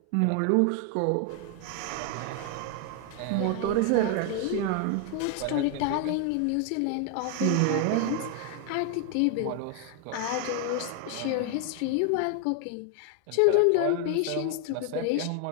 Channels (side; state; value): both; different; correlation 0.01